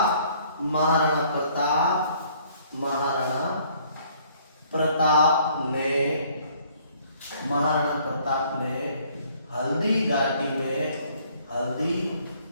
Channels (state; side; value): inverted; both; correlation -0.61